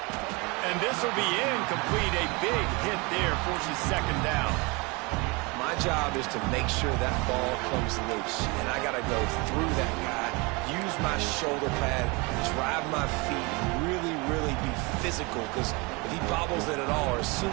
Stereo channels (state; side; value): quieter; left; 27.4 dB